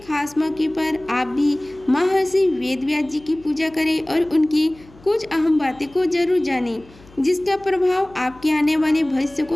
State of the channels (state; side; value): noise; left; hum, 25 dB below the sound